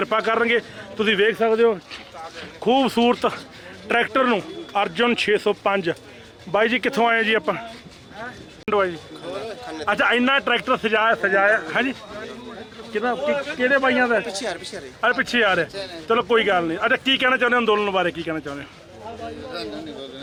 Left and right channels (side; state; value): both; identical; correlation 1.00